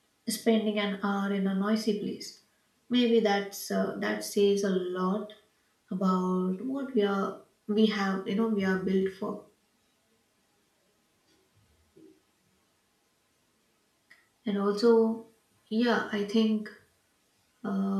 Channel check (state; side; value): identical; both; correlation 1.00